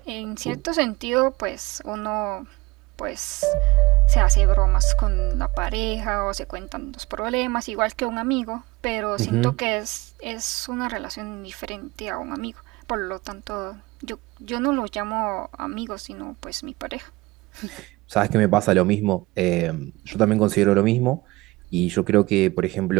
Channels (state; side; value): quieter; left; 21.4 dB